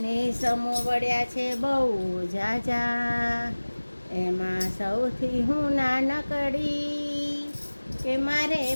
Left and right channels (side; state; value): both; inverted; correlation -1.00